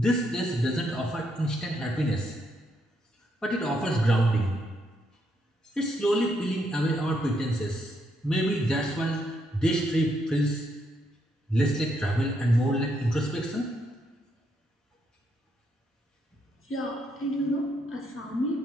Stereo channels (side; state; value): both; normal; correlation 0.76